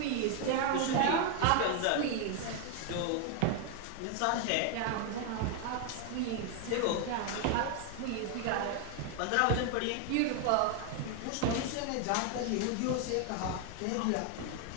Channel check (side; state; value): both; different; correlation 0.01